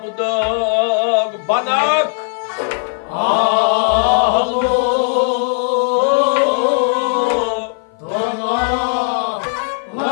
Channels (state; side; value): silent; right; 56 dB below the other